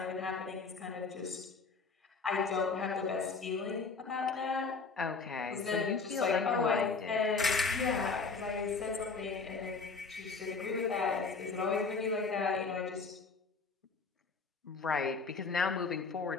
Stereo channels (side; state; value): right; quieter; 4.5 dB